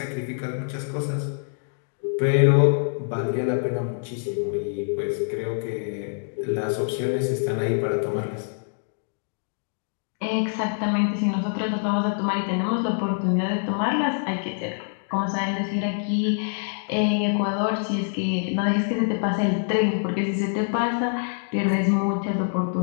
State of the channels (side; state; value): right; silent; digital silence